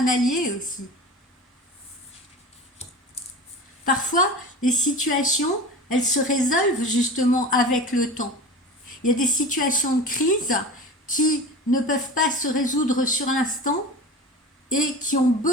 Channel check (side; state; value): both; normal; correlation 0.33